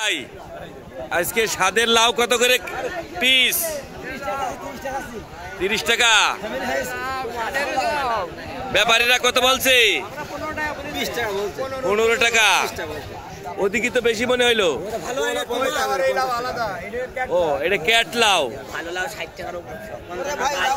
আজকে স্বাদের লাউ কত করে পিস? 30 টাকা। ব্যাপারীরা কত বলছে? 15 টাকা। ওদিকে তো বেশি মনে হইলো। ও, এটা ক্যাট লাউ।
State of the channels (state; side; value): identical; both; correlation 1.00